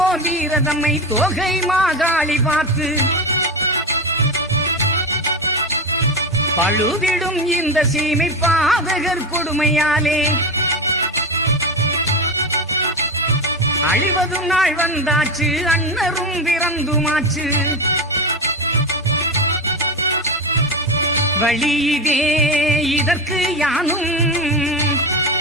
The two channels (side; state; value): both; normal; correlation 0.19